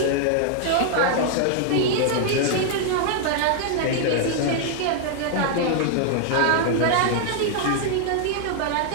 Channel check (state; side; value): different; both; correlation 0.00